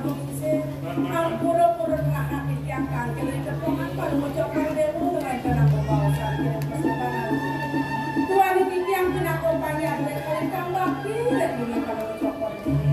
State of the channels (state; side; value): identical; both; correlation 1.00